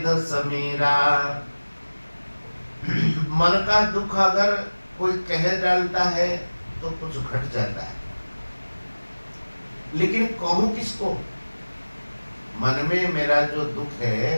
समीरा। मन का दुख अगर कोई कह डालता है तो कुछ घट जाता है, लेकिन कहूं किसको? मन में मेरा जो दुख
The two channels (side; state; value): both; inverted; correlation -1.00